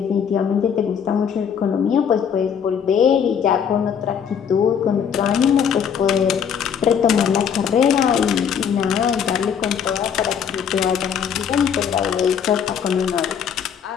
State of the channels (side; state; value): right; quieter; 7.7 dB